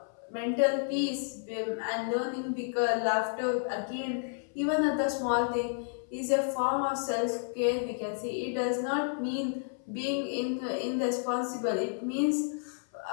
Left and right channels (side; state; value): right; silent; 57 dB below the other